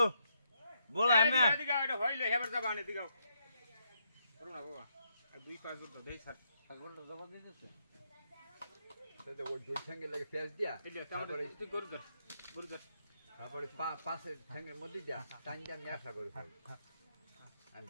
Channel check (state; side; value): inverted; both; correlation -0.78